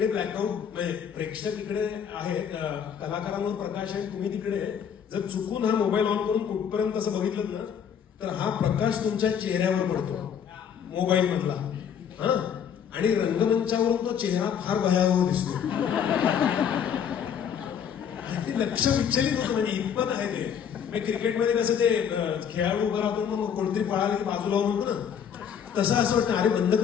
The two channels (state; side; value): quieter; right; 8.0 dB